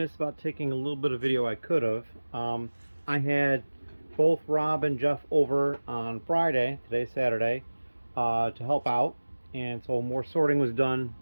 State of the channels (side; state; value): both; inverted; correlation -1.00